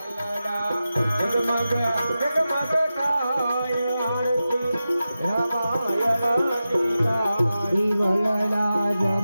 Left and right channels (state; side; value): inverted; both; correlation -0.93